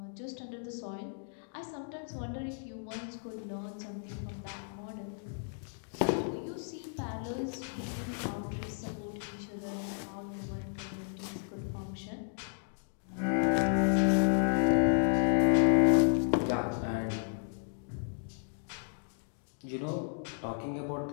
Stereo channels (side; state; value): right; silent; digital silence